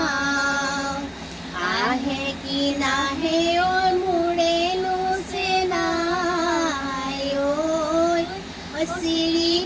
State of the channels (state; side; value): identical; both; correlation 1.00